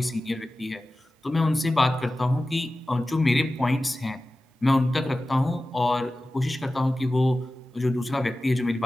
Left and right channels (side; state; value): both; normal; correlation 0.95